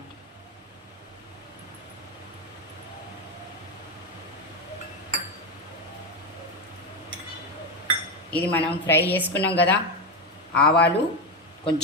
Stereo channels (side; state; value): both; normal; correlation 0.11